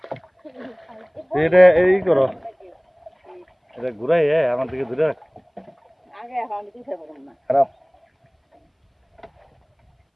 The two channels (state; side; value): identical; both; correlation 1.00